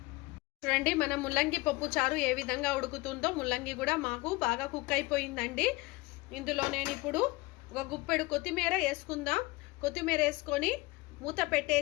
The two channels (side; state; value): right; quieter; 22.3 dB